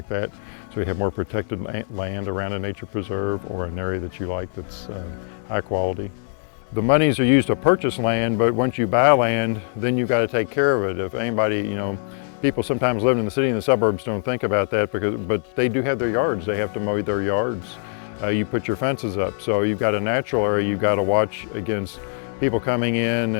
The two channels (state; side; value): silent; right; digital silence